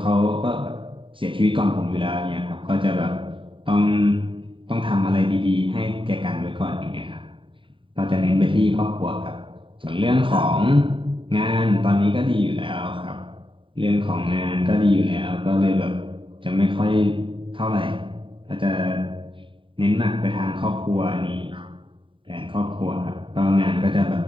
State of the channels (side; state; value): left; late; 0.25 ms